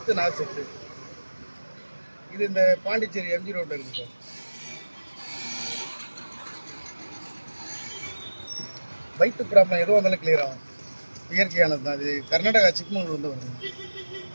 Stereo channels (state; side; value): inverted; both; correlation -1.00